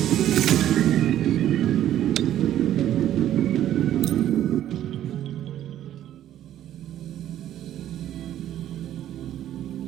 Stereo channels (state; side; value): quieter; left; 11.9 dB